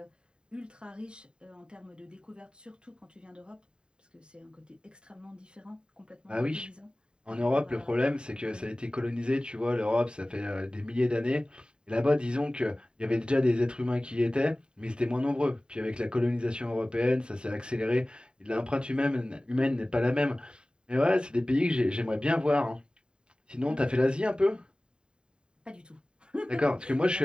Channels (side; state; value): left; late; 0.050 ms